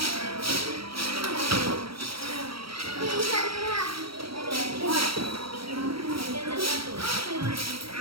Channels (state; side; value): late; left; 0.75 ms